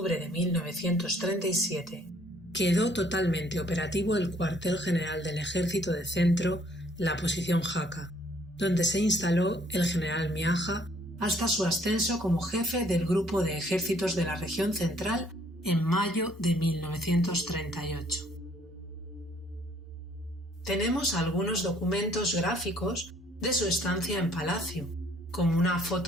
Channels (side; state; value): both; normal; correlation 0.62